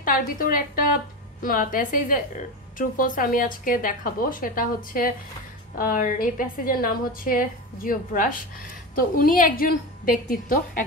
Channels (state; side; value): normal; both; correlation 0.22